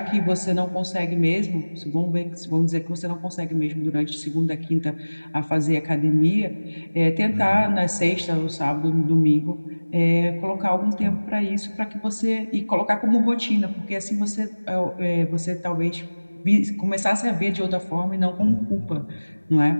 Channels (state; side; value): inverted; both; correlation -1.00